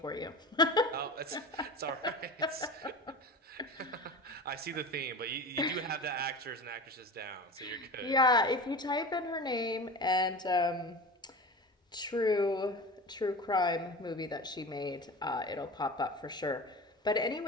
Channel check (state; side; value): normal; both; correlation 0.32